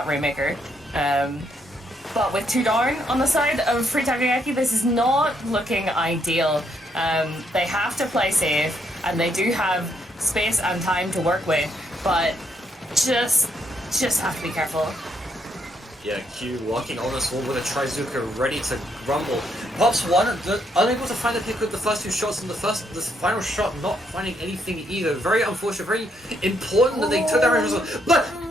Rainmaker. But with 2 down on the side of Free Takoyaki, this is not looking ideal. They have to play safe, and they do have space and time to work with, but just have to be careful. Yeah, Q walking on this wall with a Trizuka ready to rumble. Pops one, unable to find a pick with the first 2 shots, and the final shot not finding anything either. Very unfortunate, very important that they took that result, but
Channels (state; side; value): normal; both; correlation 0.74